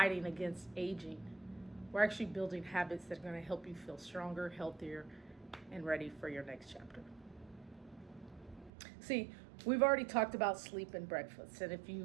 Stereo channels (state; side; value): drops out; left; at 8.7 s